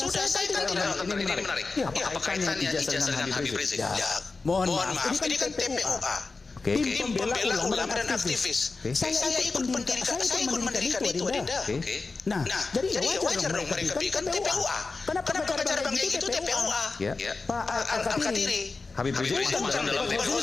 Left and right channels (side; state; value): right; quieter; 4.0 dB